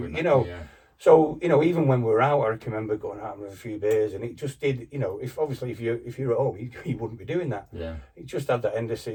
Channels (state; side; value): identical; both; correlation 1.00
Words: So even when we were out, I can remember going out with a few beers, and it just did. If you're at home, you wouldn't be doing that. Yeah. It just had that end of